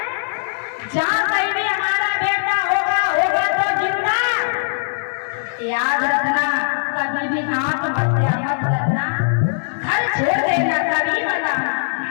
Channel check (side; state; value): right; silent; 63 dB below the other